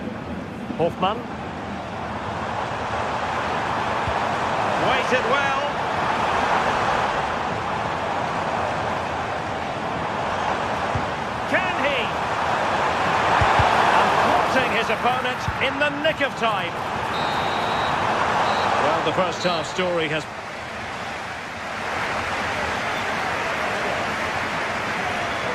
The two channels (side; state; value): both; identical; correlation 1.00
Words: Hofmann. Waited well. Can he? And thwarting his opponent in the nick of time. Well, the first half story has...